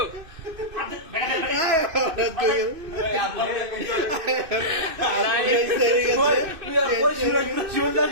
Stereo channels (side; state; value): left; late; 2.6 ms